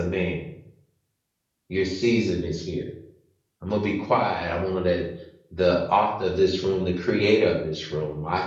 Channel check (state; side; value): identical; both; correlation 1.00